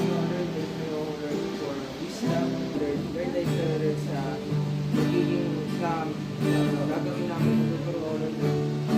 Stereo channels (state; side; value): identical; both; correlation 1.00